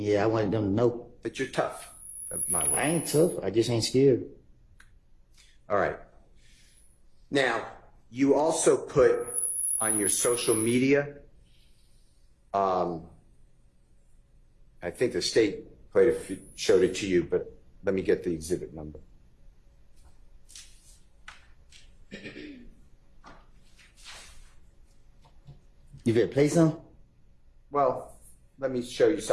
I wanted them to know. That you're tough. I ain't tough, I just ain't scared. All right. Now, you also put on your social media, I think the state showed it to you, but let me get the exhibit number. You better play some? Well, let me show you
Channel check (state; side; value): identical; both; correlation 1.00